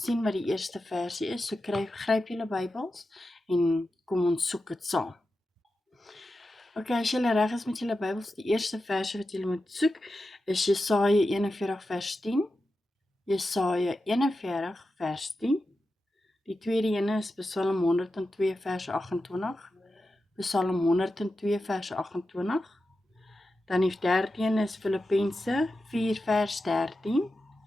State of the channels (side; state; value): both; normal; correlation 0.91